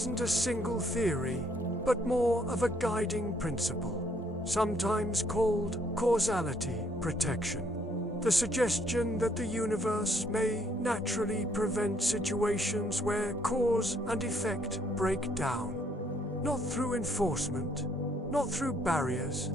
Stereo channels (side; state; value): both; normal; correlation 0.68